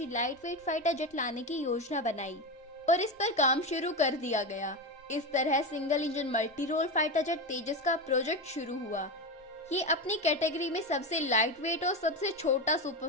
लाइट वेट फाइटर जेट लाने की योजना बनाई और इस पर काम शुरू कर दिया गया। इस तरह single engine multi role fighter jet Tejas का प्रोजेक्ट शुरू हुआ। ये अपनी कैटेगरी में सबसे लाइट वेट और सबसे छोटा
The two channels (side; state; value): both; normal; correlation 0.17